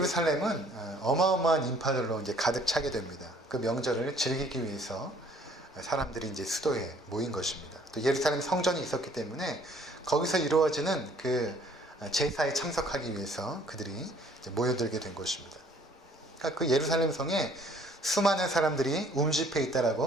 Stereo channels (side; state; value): both; normal; correlation 0.58